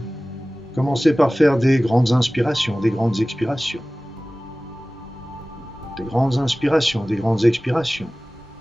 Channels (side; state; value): both; normal; correlation 0.97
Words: commencez par faire des grandes inspirations, des grandes expirations. Des grandes inspirations, des grandes expirations